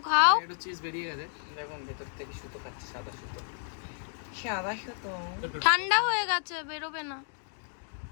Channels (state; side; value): silent; right; 57 dB below the other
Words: খাও। একটু চিজ বেরিয়ে গেছে, দেখুন ভেতর থেকে সুতো খাচ্ছে, সাদা সুতো। ঠান্ডা হয়ে গেছে, বেরোবে না।